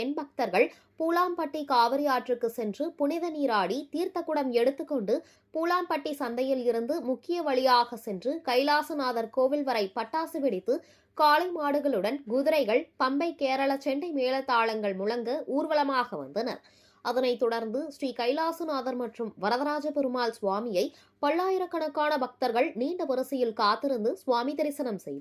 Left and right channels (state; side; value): identical; both; correlation 1.00